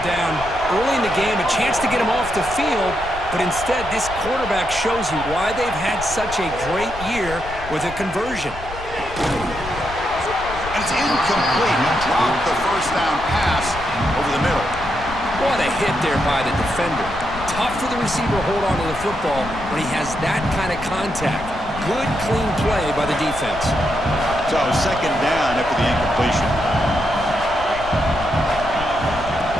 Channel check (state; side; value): noise; left; rumble, 12 dB below the sound